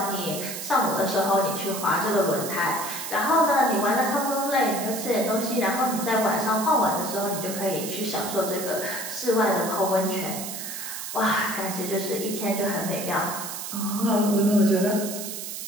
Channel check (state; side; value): noise; right; hiss, 7 dB below the sound